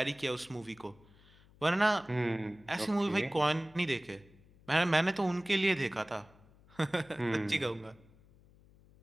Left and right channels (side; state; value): left; noise; hum, 27 dB below the sound